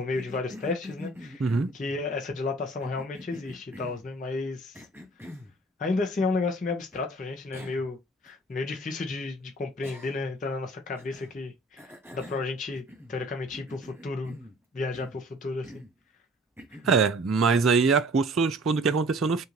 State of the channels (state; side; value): normal; both; correlation 0.51